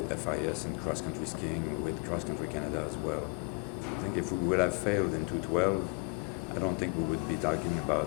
FIS and cross-country skiing, with Cross Country Canada as well. I think if we would have failed in 2012, I don't think we would be talking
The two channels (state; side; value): quieter; right; 33.0 dB